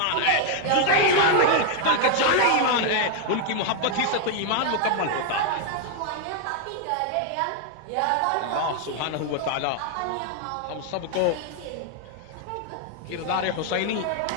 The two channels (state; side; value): different; both; correlation 0.00